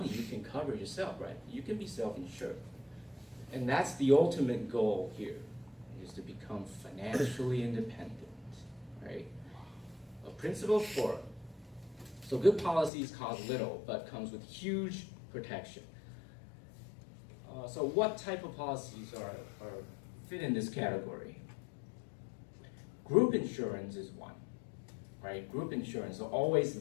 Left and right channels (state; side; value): drops out; right; at 12.9 s